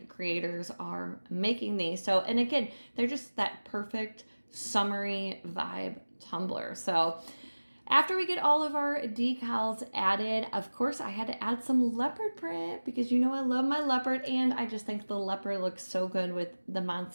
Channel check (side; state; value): both; inverted; correlation -1.00